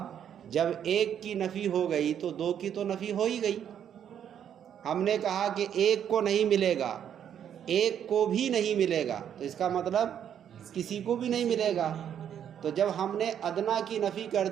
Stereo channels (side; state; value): left; quieter; 9.2 dB